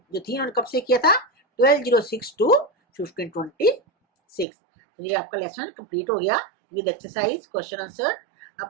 जो थी, उन्होंने कब से किया था? 1206 टू 1526। तो ये आपका लेसन कंप्लीट हो गया विद एक्सरसाइज क्वेश्चन आंसर।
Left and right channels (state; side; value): drops out; left; at 4.5 s